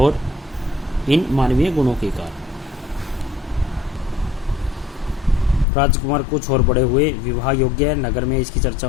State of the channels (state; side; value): drops out; right; at 5.7 s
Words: इन मानवीय गुणों के कारण। राजकुमार कुछ और बड़े हुए, विवाह योग्य नगर में इसकी चर्चा